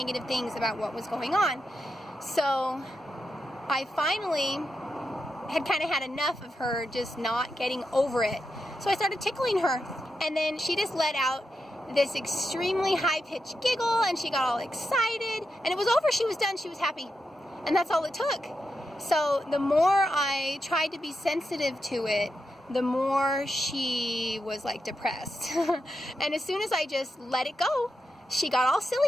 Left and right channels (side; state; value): both; normal; correlation 0.86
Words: things about what was going on. So I finally had kind of had enough of her just not getting over it. So I started tickling her, and then she just let out this extremely high-pitched giggle, and she got all excited, and it was over. She was done. She was happy, and that's all it took. So the more I tried to be sensitive to it, the more she was like depressed. And as soon as I just let it go, she got all